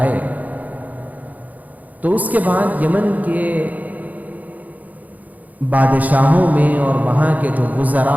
تو اس کے بعد یمن کے بادشاہوں میں اور وہاں کے جو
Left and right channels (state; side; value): late; left; 0.078 ms